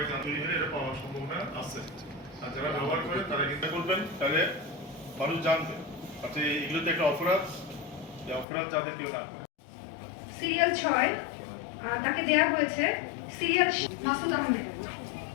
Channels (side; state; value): right; drops out; at 8.5 s